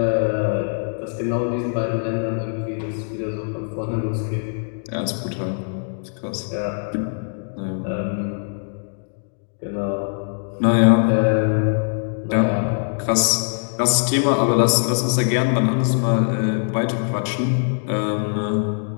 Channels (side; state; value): right; silent; digital silence